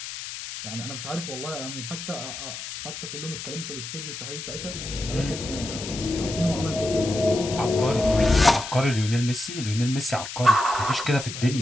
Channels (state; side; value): noise; left; hiss, 8 dB below the sound